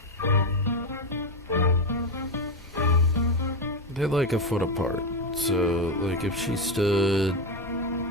They're like a foot apart. So, like, if she stood...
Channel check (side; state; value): both; normal; correlation 0.11